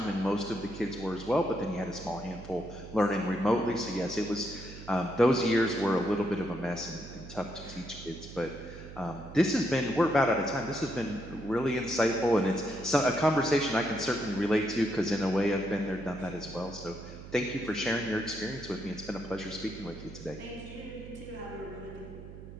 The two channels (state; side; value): noise; right; hum, 14 dB below the sound